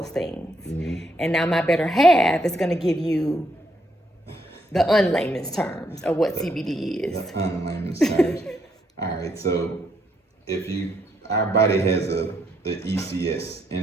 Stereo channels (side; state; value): both; normal; correlation 0.75